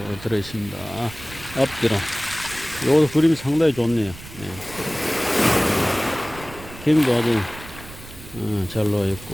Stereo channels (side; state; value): right; noise; rumble, 16 dB below the sound